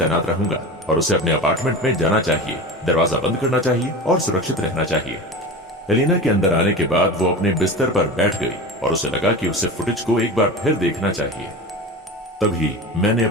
रहूंगा और उसे अपने अपार्टमेंट में जाना चाहिए, दरवाजा बंद करना चाहिए और सुरक्षित रहना चाहिए। एलेना के अंदर आने के बाद वो अपने बिस्तर पर बैठ गई और उसे लगा कि उसे फुटेज को एक बार फिर देखना चाहिए। तभी मैंने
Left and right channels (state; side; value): normal; both; correlation 0.30